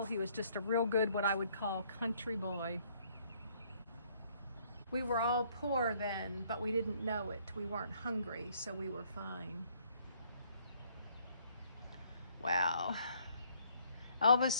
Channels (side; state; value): both; inverted; correlation -0.65